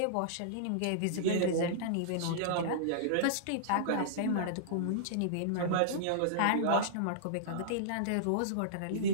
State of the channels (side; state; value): both; different; correlation -0.03